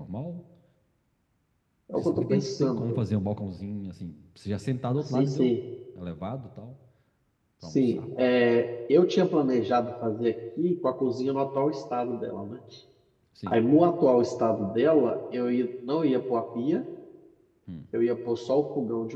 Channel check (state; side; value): identical; both; correlation 1.00